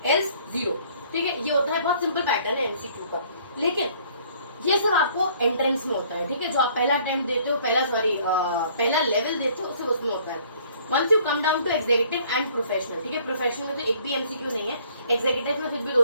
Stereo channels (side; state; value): both; inverted; correlation -0.58